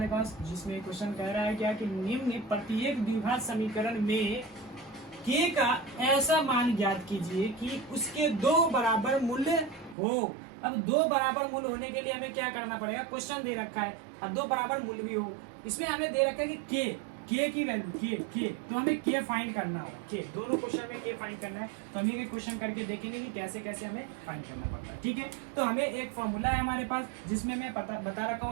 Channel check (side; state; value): left; drops out; at 10.0 s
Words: पास, जिसमें क्वेश्चन कह रहा है क्या कि निम्न प्रत्येक द्विघात समीकरण में k का ऐसा मान ज्ञात कीजिए कि उसके 2 बराबर मूल्य हो। अब 2 बराबर मूल्य होने के लिए हमें क्या करना पड़ेगा, क्वेश्चन दे रखा है, अब 2 बराबर मूल्य भी हो। इसमें हमें दे रखा है कि k की वैल्यू k, तो हमें k फाइंड करना है, k दोनों क्वेश्चन में k फाइंड करना है। तो हम ये क्वेश्चन करके देखेंगे कि कैसे कैसे हमें फाइंड करना पड़ता है। ठीक है, तो हमें एक फॉर्मूला है हमारे पास, जिसमें मैं बता रखा